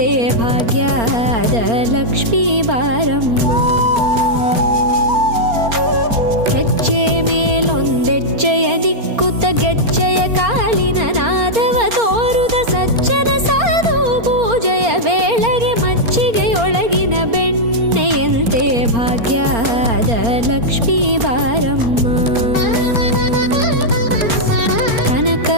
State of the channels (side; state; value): left; late; 4.3 ms